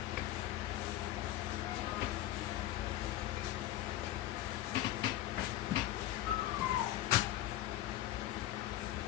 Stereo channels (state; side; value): quieter; right; 14.0 dB